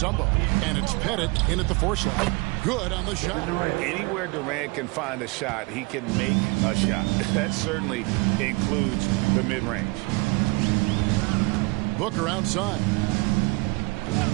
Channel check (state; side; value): quieter; left; 26.7 dB